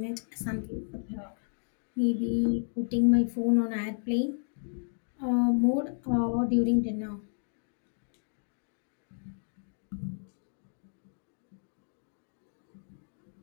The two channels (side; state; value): right; silent; digital silence